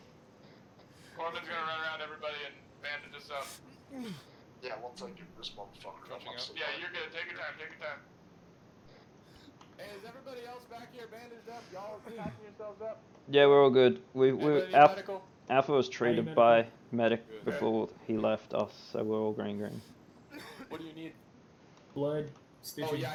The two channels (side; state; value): both; identical; correlation 1.00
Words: Corman's gonna run around everybody and bandage us up. Yeah, once I get this motherfucker up, I'm so Yeah, you're good. Take your time, take your time. Hey, is everybody else back here bandaged up? Y'all patching yourselves up? Yeah, we're all good. Anybody need Alpha, medical? Alpha was treated by medic before he left us, so we're all green. What do you need? Blood, stitching. Oh yeah,